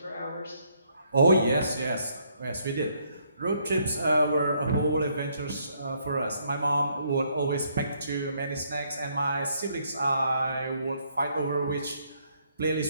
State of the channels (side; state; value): both; inverted; correlation -0.70